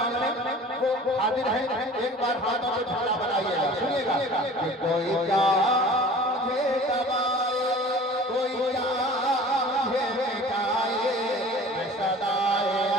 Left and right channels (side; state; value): both; normal; correlation 0.44